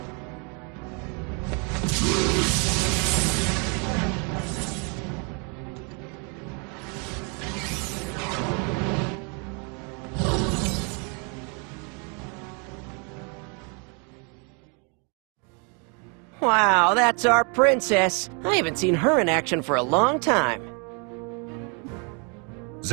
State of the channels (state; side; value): quieter; left; 35.1 dB